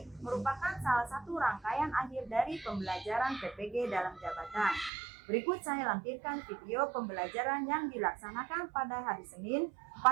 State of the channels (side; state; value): left; drops out; at 4.9 s